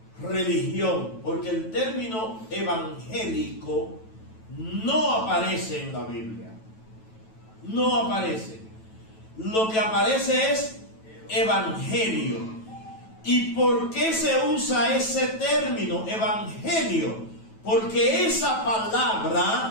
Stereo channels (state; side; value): late; right; 9.1 ms